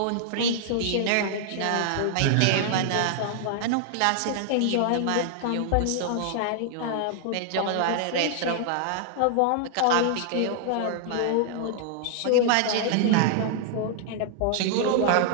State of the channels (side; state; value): both; different; correlation -0.01